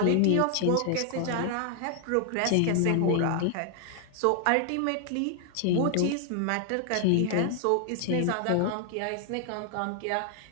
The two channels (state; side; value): different; both; correlation 0.00